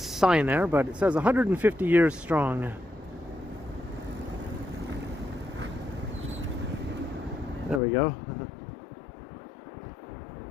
there, but it says 150 years strong. There we go. Do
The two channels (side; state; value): right; drops out; at 7.8 s